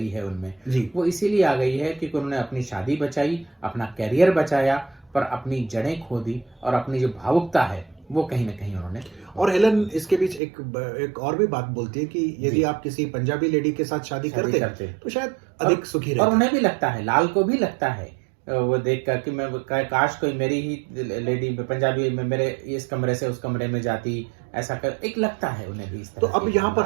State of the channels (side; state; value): left; drops out; at 10.4 s